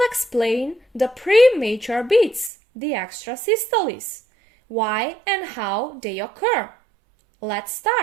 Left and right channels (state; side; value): drops out; left; at 2.5 s